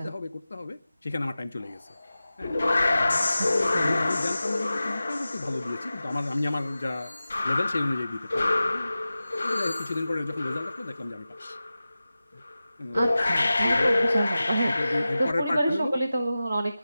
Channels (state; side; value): inverted; both; correlation -0.95